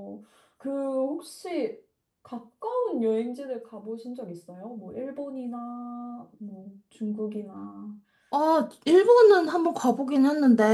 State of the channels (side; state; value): both; identical; correlation 1.00